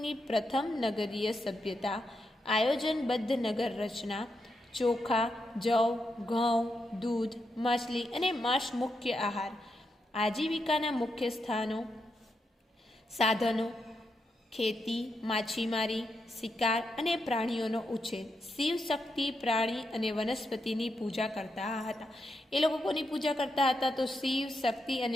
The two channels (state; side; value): normal; both; correlation 0.84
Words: પ્રથમ નગરીય સભ્યતા, આયોજનબદ્ધ નગર રચના, ચોખા, જવ, ઘઉં, દૂધ, માછલી અને માંસ મુખ્ય આહાર. આજીવિકાના મુખ્ય સાધનો ખેતી, માછીમારી, શિકાર અને પ્રાણીઓનો ઉછેર. શિવ શક્તિ, પ્રાણી અને વનસ્પતિની પૂજા કરતા હતા. એ લોકો કોની પૂજા કરતા હતા, તો શિવ શક્તિ